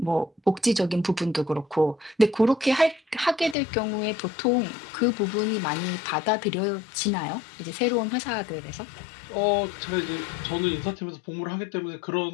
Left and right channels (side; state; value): right; drops out; at 3.6 s